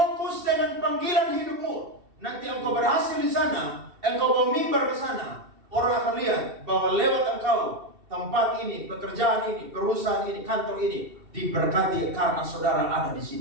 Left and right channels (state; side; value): late; left; 2.7 ms